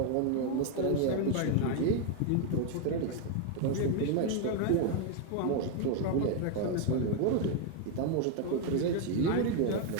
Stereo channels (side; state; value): both; different; correlation 0.01